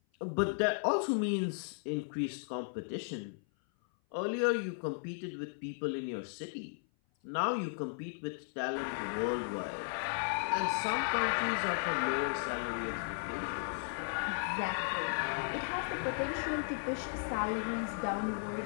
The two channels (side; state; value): right; silent; 54 dB below the other